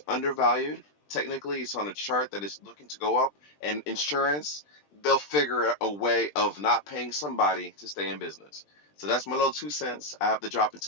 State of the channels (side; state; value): right; late; 20 ms